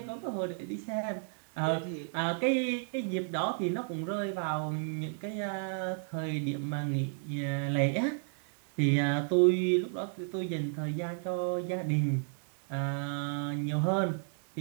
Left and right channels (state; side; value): silent; left; digital silence